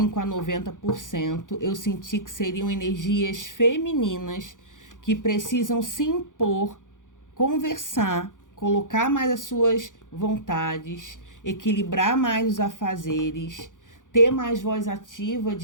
a 90%, eu senti que seriam energias femininas que precisam se impor, conversar, colocar mais as suas vontades, equilibrar mais os afazeres, ter mais voz ativa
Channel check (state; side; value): late; right; 0.88 ms